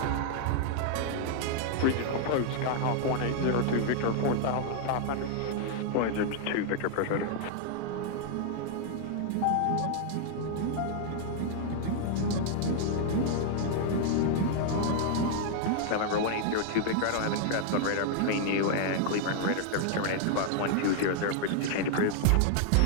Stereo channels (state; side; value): different; both; correlation 0.00